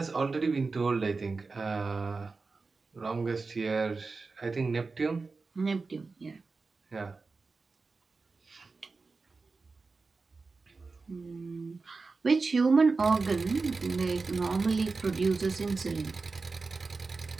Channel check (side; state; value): left; quieter; 4.1 dB